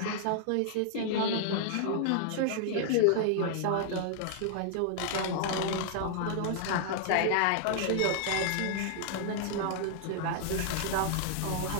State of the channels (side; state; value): both; different; correlation 0.00